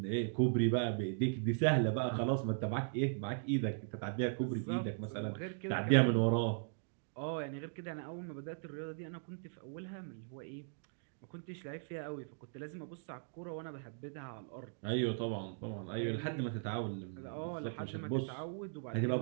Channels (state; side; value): silent; left; digital silence